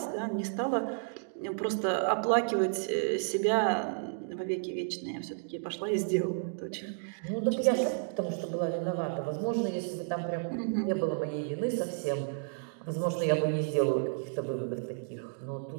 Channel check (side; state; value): left; silent; digital silence